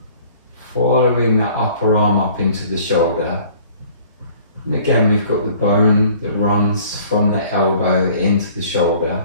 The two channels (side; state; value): both; inverted; correlation -0.53